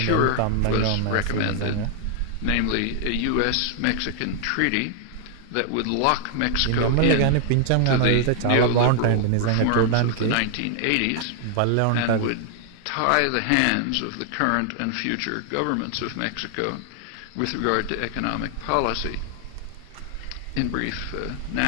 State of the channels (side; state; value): both; different; correlation 0.00